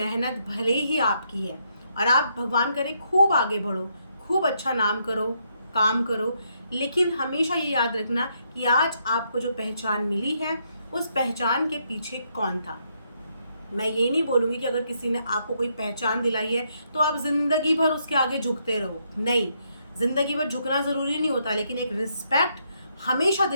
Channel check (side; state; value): both; inverted; correlation -0.76